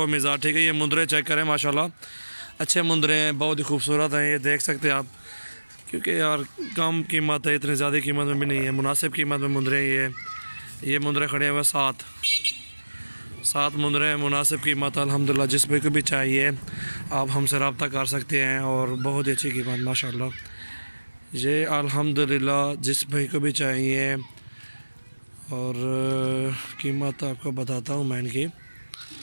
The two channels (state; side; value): inverted; both; correlation -1.00